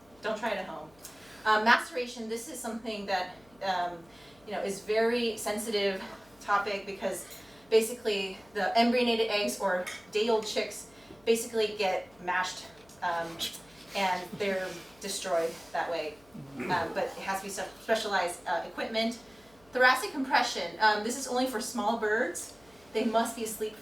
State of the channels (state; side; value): noise; left; hum, 29 dB below the sound